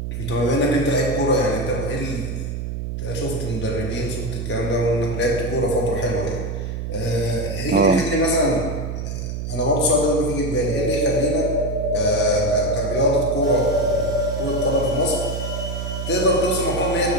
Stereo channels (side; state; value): right; noise; hum, 5 dB below the sound